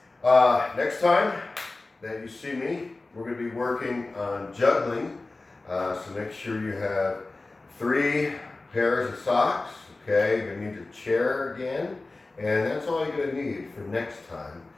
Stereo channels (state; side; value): quieter; right; 3.3 dB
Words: next time that you see me, we're going to be working on juggling. So make sure you have 3 pairs of socks. Okay, you're going to need your chair again. And that's all you're going to need for next time.